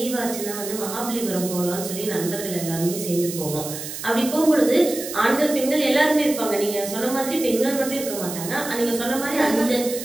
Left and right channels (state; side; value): noise; right; hiss, 8 dB below the sound